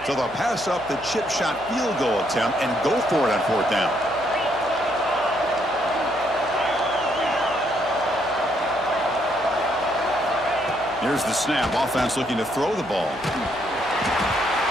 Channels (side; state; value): left; noise; hum, 21 dB below the sound